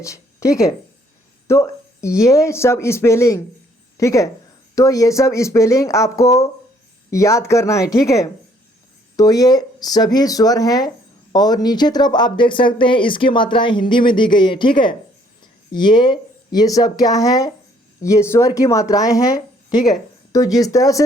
ठीक है। तो ये सब स्पेलिंग, ठीक है, तो ये सब स्पेलिंग आपको याद करना है, ठीक है। तो ये सभी स्वर हैं और नीचे तरफ आप देख सकते हैं इसकी मात्राएं हिंदी में दी गई हैं, ठीक है। ये सब क्या है, ये स्वर की मात्राएं हैं, ठीक है। तो जिस तरह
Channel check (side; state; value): both; normal; correlation 0.63